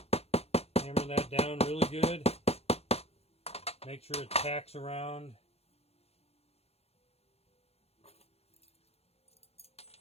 Hammer that down really good. Make sure it packs around.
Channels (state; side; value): late; right; 0.30 ms